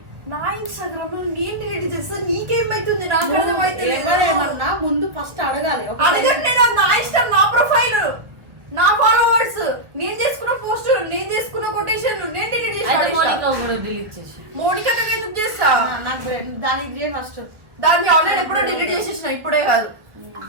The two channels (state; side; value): late; left; 1.0 ms